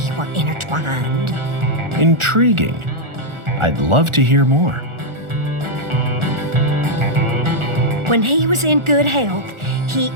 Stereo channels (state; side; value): late; left; 1.4 ms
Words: were intertwined. Intriguing. I'd love to hear more. When he was in good health, he